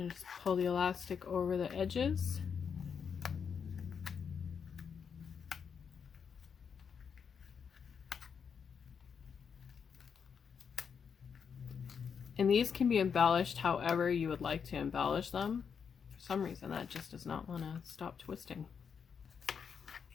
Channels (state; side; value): quieter; right; 6.7 dB